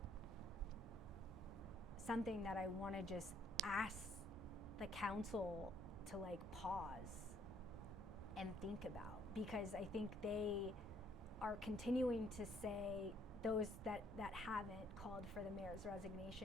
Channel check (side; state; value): both; normal; correlation 0.66